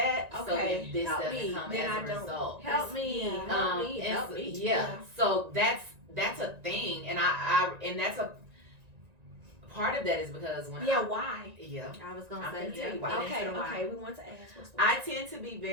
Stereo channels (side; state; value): left; late; 1.9 ms